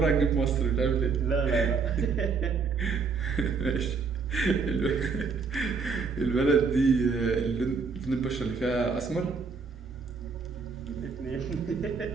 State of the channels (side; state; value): left; quieter; 5.0 dB